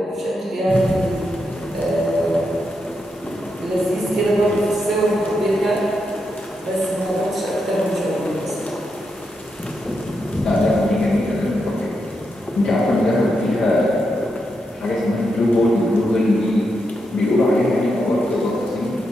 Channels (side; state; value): both; normal; correlation 0.84